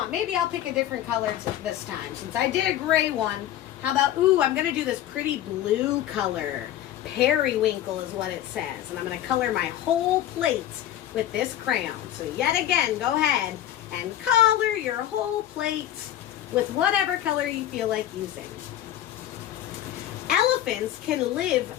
Maybe I'll pick a different color this time. Since I did a gray one, how about, I'm going to do this pretty blue color. Periwinkle is what it says. And I'm going to color my whole plate with this crayon. So yet again, go ahead and color your whole plate with whatever color you feel like using. Elephants can live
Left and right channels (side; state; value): right; quieter; 12.2 dB